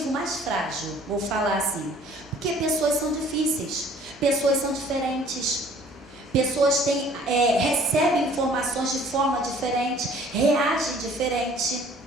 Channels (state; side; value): noise; right; hum, 29 dB below the sound